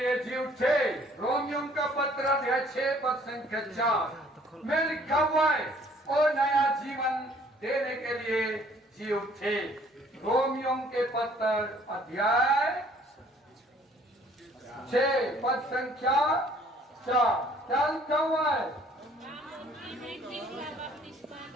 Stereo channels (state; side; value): normal; both; correlation 0.58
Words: जी उठे। रोमियो का पत्र अध्याय 6 पद संख्या 4 में लिखा हुआ है और नया जीवन देने के लिए जी उठे। रोमियो के पत्र अध्याय 6 पद संख्या 4 क्या लिखा हुआ है?